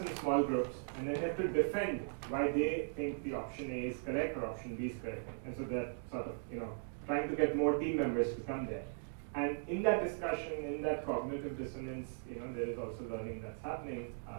small groups, and then they have to defend why they think the option A is correct or option B is correct. And so they're sort of, trying to get more team members to come there. And in that discussion, in that cognitive dissonance, there is also learning that's happening.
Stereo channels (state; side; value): silent; left; digital silence